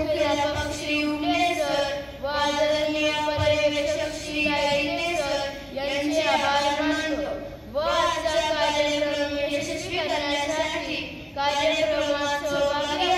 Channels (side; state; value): both; identical; correlation 1.00